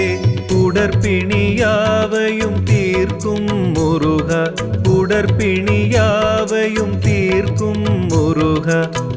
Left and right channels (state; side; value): identical; both; correlation 1.00